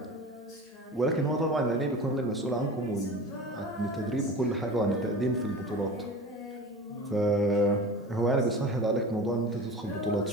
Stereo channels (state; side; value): normal; both; correlation 0.35